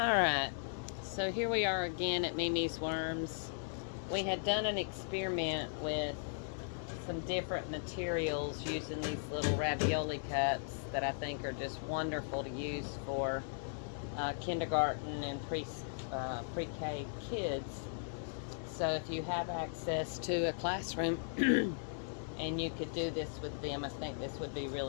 so here we are again at Mimi's Worms. We had done an experiment with some different materials using these little ravioli cups that I think are just wonderful to use for kindergarten and pre-K kids. So if you have access to a classroom and you could do this with them, I think this would be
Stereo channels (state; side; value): silent; right; digital silence